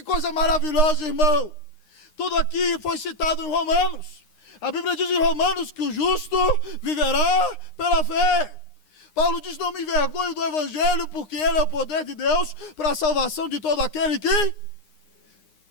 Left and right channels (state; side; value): late; right; 9.8 ms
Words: coisa maravilhosa, irmão. Tudo aqui foi citado em Romanos. A Bíblia diz em Romanos que o justo viverá pela fé. Paulo diz, não me envergonho do Evangelho, porque ele é o poder de Deus para a salvação de todo aquele que...